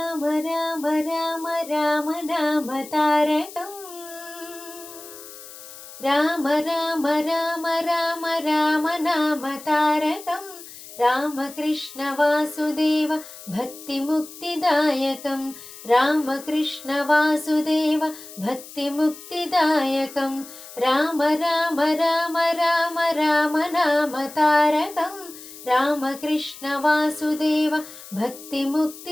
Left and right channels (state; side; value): noise; left; hiss, 16 dB below the sound